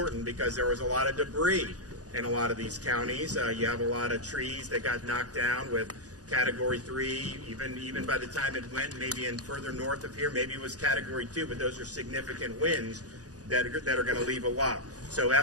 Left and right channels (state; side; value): late; left; 0.67 ms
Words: because there was a lot of debris in a lot of these counties. You have a lot of trees that got knocked down with Category 3, even by the time it went maybe in further north of here, maybe it was Category 2, but those are significant winds that are going to leave a lot. So